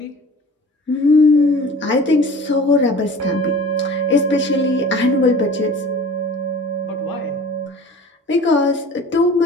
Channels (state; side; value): normal; both; correlation 0.42